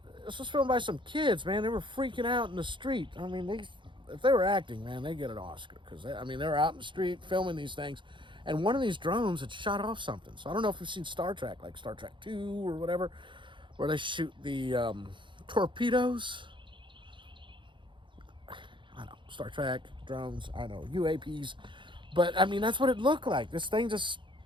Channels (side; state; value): left; late; 0.23 ms